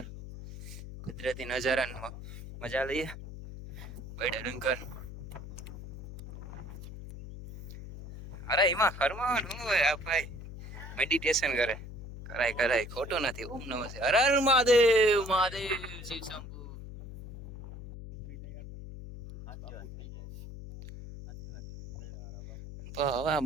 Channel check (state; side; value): noise; left; hum, 11 dB below the sound